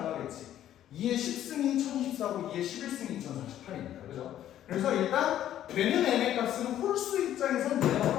2의 10승이 1024고 2의 11승이 2048이니까. 그죠? 그래서 일단 되는 m의 값은 홀수 입장에선 내가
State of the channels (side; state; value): right; quieter; 11.7 dB